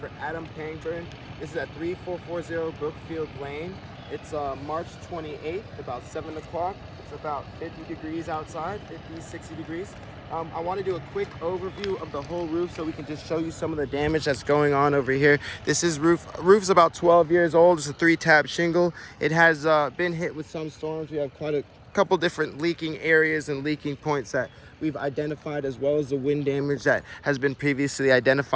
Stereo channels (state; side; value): identical; both; correlation 1.00